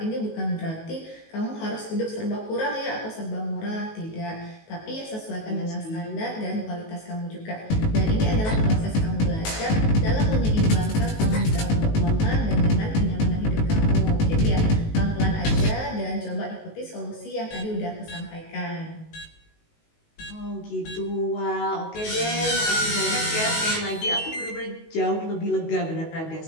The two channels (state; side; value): late; right; 19 ms